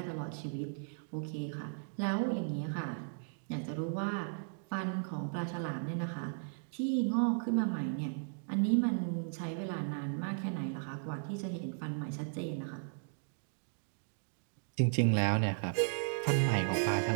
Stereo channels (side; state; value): left; silent; digital silence